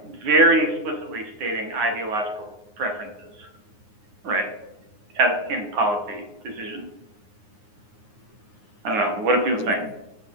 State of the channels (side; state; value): left; late; 9.7 ms